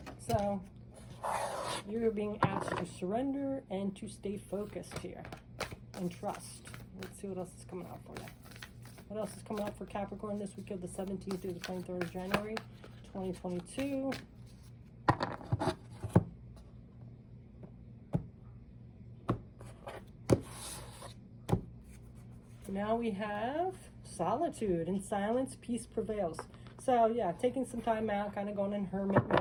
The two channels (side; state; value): both; identical; correlation 1.00